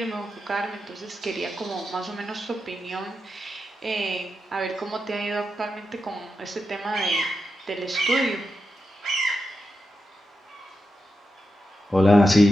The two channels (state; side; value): normal; both; correlation 0.88